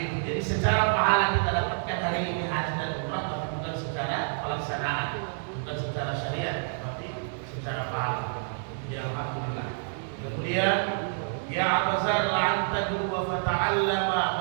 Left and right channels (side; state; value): left; silent; digital silence